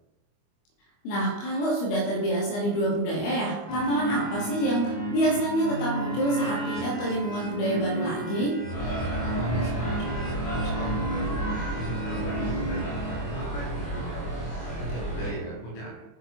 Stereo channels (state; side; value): late; right; 25 ms